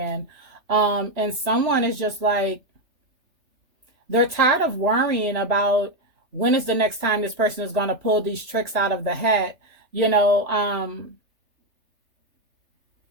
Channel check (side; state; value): left; late; 3.4 ms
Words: And someone is just like, they're tired of worrying about when is the next time this person is going to pull these tricks out of the hat. You know,